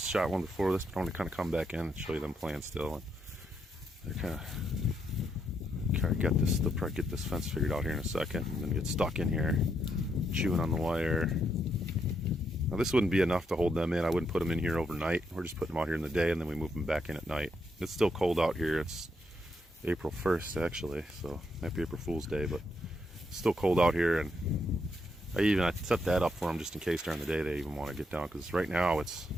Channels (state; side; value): normal; both; correlation 0.78